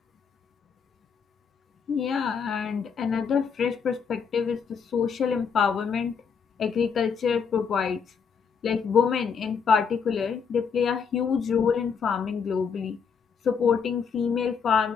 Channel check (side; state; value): right; quieter; 6.3 dB